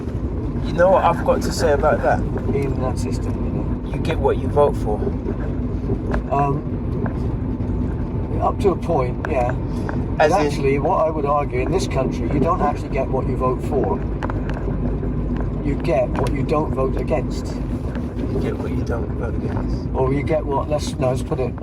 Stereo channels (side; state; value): both; identical; correlation 1.00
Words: You know what I've got to say about that? In that system, you get what you vote for. Up to a point, yeah. But actually, what I would argue, in this country, you don't actually get what you vote for. You get what you don't vote against. You get what you don't vote against. Or you get what? Let's put it